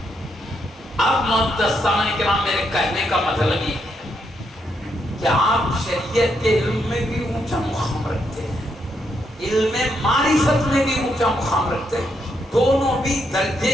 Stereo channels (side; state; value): both; normal; correlation 0.78